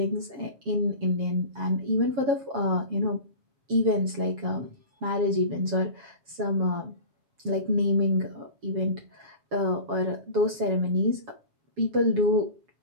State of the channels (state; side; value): late; left; 7.2 ms